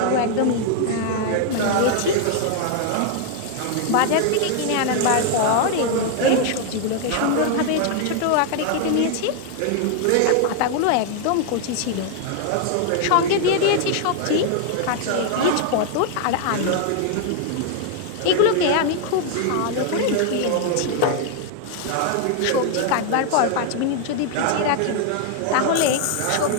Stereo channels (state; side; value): different; both; correlation 0.00